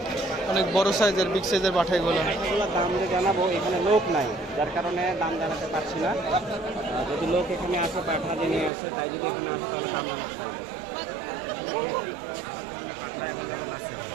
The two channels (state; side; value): drops out; left; at 8.7 s